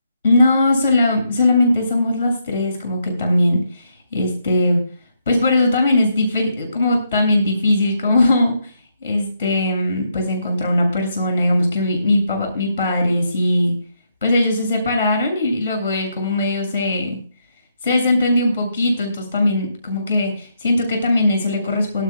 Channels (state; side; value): inverted; both; correlation -0.78